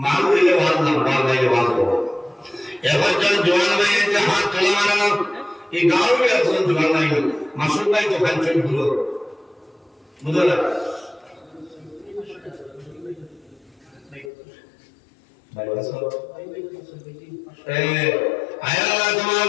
মাল দিলে আওয়াজ না মাল দিলে আওয়াজ করো এবার যখন জওয়ান ভাই যে হাত তোলা মারানো এই গাঁও में একজন জওয়ান ভাই মাসুদ ভাই তো খান চল গুলো বুঝলা আয় আল্লাহ তোমার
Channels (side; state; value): right; drops out; at 14.3 s